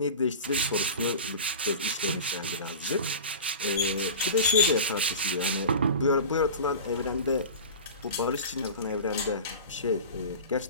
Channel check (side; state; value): both; inverted; correlation -0.33